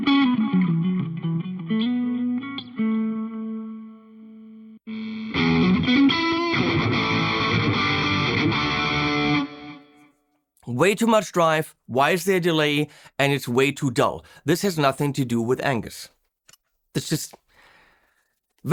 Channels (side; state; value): both; identical; correlation 1.00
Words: Way too much drive, why is there a delay, and it's way too dull. This has nothing to do with Angus. It's just